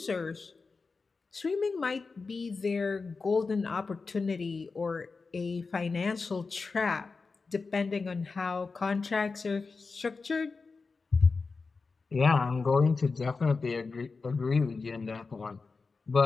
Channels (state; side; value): quieter; right; 4.3 dB